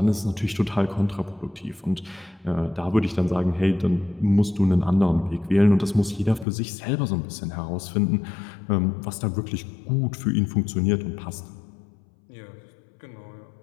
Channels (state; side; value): drops out; right; at 6.5 s